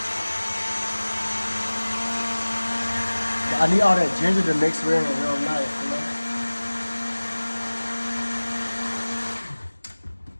I need all that ginger to mix with it real nice, you know?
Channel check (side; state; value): both; inverted; correlation -1.00